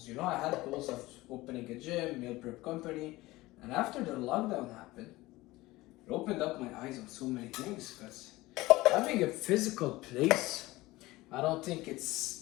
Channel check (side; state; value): right; quieter; 19.3 dB